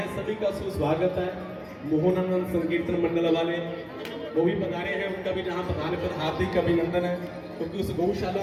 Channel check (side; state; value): both; identical; correlation 1.00